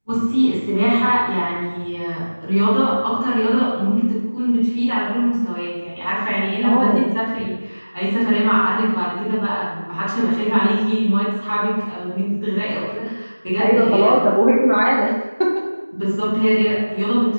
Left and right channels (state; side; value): inverted; both; correlation -1.00